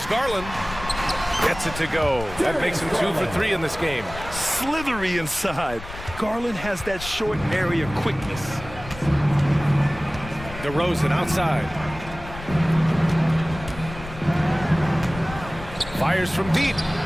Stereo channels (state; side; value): noise; left; rumble, 13 dB below the sound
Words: Garland. Gets it to go. That makes him 2 for 3 in this game. Slithery inside. Garland has that short area quickness. DeRozan outside. Fires from deep.